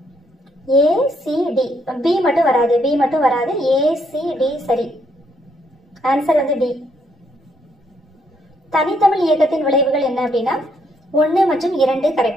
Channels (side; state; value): both; normal; correlation 0.73